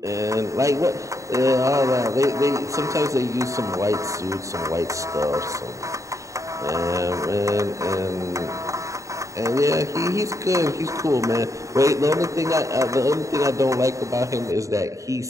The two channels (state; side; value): late; left; 0.15 ms